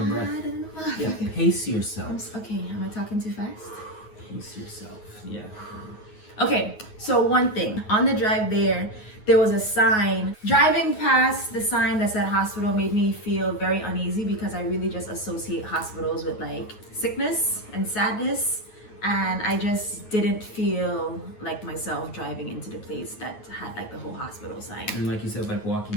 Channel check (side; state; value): right; late; 9.4 ms